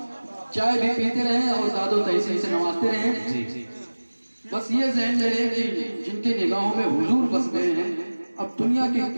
चाय भी पीते रहें और दादो तहसीन से नवाजते रहें। जी जी। बस ये ज़हन में रहे कि जिनकी निगाहों में हुजूर बस गए हैं, अब दुनिया की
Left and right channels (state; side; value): inverted; both; correlation -1.00